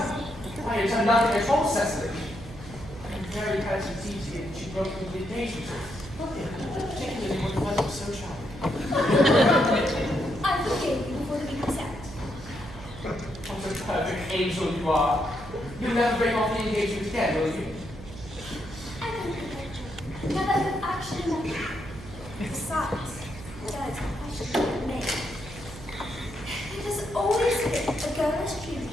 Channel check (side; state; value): right; noise; hum, 15 dB below the sound